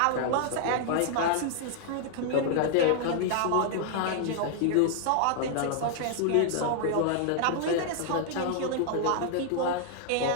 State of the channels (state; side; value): different; both; correlation 0.00